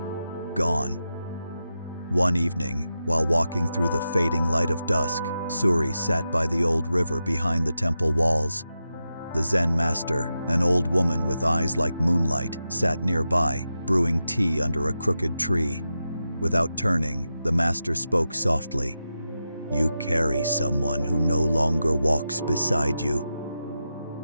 gone. One evening, while walking through the fading light of dusk, Suri sat by the old river behind the temple walls. The Zen master, an old woman with eyes like moonlight, sat nearby, brewing tea under a crooked tree. Without turning, the master spoke softly. "You carry someone who no longer walks beside you."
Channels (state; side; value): inverted; both; correlation -0.90